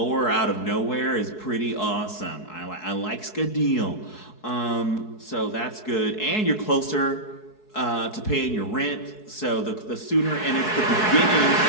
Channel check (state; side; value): late; right; 4.7 ms